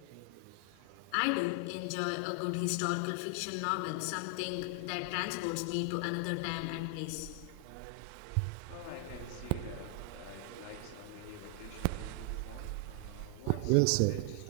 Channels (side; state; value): both; different; correlation 0.00